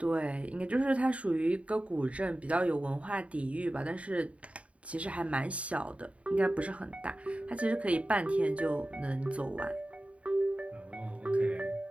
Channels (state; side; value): late; left; 0.064 ms